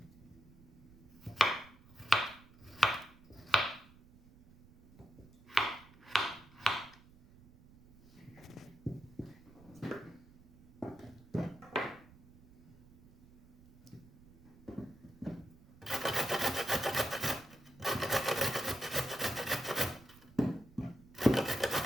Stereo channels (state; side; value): noise; right; rumble, 24 dB below the sound